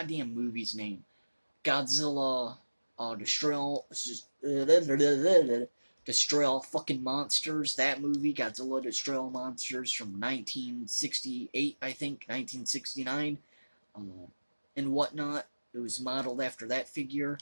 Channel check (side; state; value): both; inverted; correlation -1.00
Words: movie's name? Godzilla, Destroy All Fucking Monsters. That movie, Godzilla Destroy All Monsters from 1968, I think, 1969, and whatnot. It was modeled after that figure,